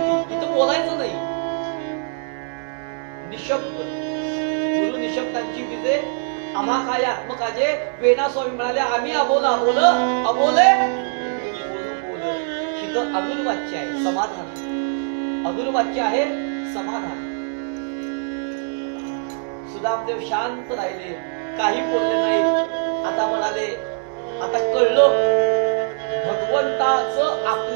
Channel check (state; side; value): silent; left; digital silence